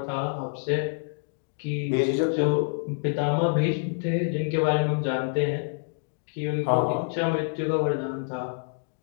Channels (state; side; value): silent; right; digital silence